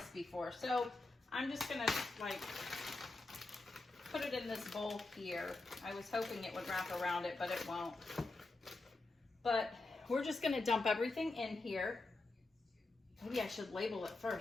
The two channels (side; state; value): right; quieter; 3.2 dB